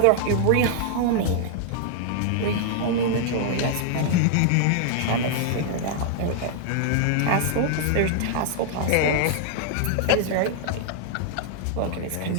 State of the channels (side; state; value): both; different; correlation 0.00